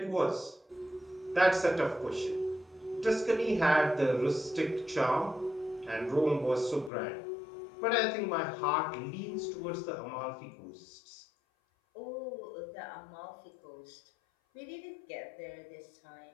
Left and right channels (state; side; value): drops out; right; at 6.9 s